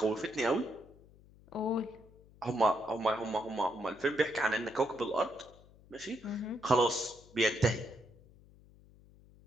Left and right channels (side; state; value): left; noise; hum, 25 dB below the sound